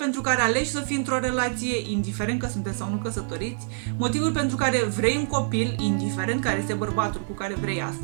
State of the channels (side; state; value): left; silent; 61 dB below the other